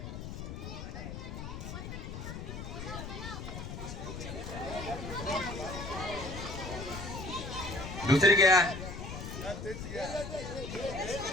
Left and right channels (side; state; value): left; noise; rumble, 7 dB below the sound